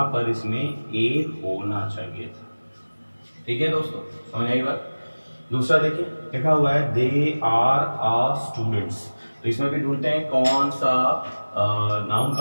पर इसमें ए होना चाहिए था। ठीक है दोस्तों, समझ आई बात? दूसरा देखिए, लिखा हुआ है दे आर आ स्टूडेंट्स। तो इसमें भी ढूंढते हैं कौन सा नाउन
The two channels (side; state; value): both; inverted; correlation -1.00